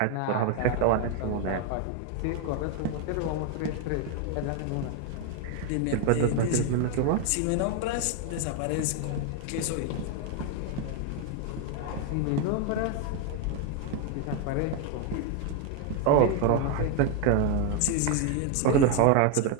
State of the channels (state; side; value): different; both; correlation 0.01